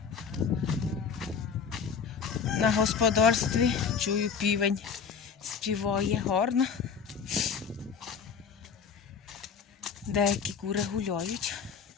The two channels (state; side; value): quieter; right; 6.3 dB